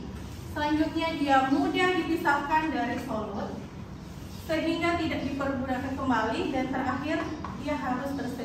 Selanjutnya dia mudah dipisahkan dari solut, sehingga tidak dipergunakan kembali, dan terakhir dia harus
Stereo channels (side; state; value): both; identical; correlation 1.00